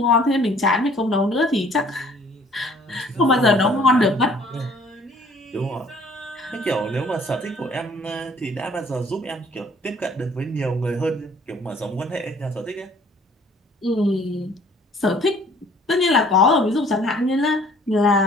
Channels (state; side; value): normal; both; correlation 0.56